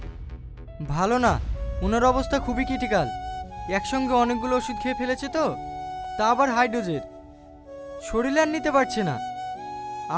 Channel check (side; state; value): both; identical; correlation 1.00